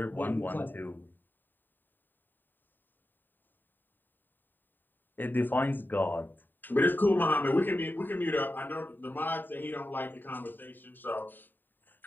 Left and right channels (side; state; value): right; late; 0.091 ms